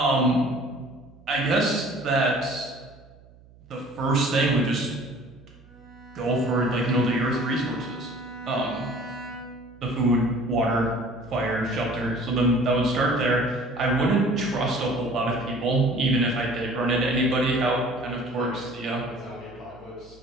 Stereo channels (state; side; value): noise; right; hum, 25 dB below the sound